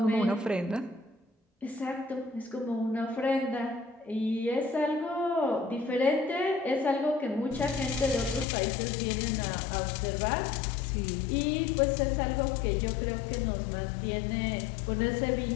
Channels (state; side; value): drops out; right; at 8.5 s